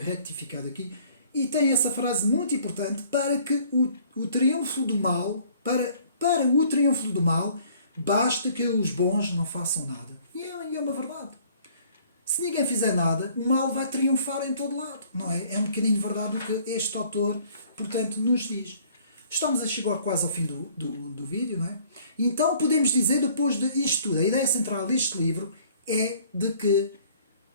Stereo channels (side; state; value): both; inverted; correlation -0.57